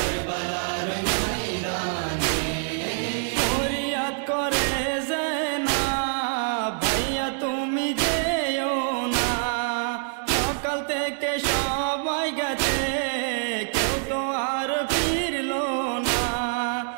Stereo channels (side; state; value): left; silent; digital silence